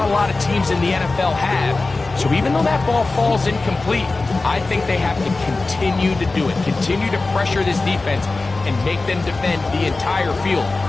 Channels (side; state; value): right; quieter; 3.5 dB